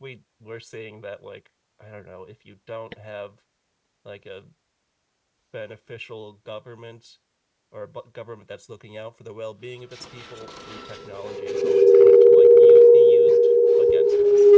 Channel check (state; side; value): identical; both; correlation 1.00